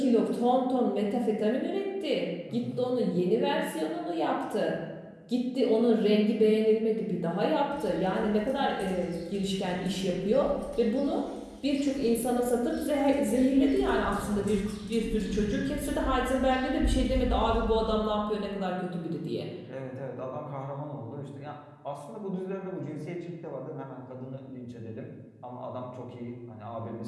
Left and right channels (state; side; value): identical; both; correlation 1.00